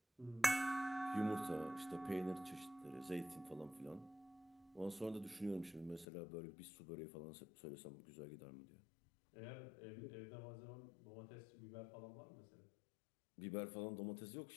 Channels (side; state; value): right; drops out; at 6.1 s